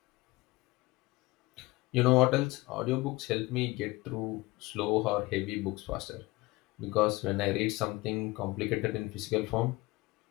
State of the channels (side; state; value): right; quieter; 21.4 dB